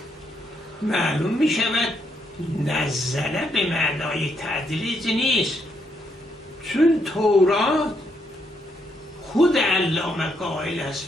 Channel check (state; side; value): normal; both; correlation 0.76